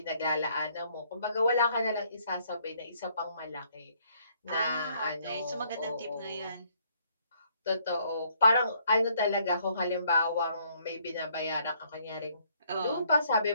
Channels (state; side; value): inverted; both; correlation -0.67